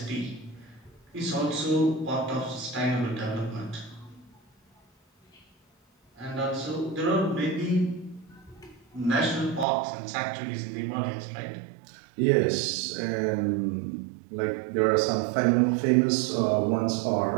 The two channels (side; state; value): left; drops out; at 9.7 s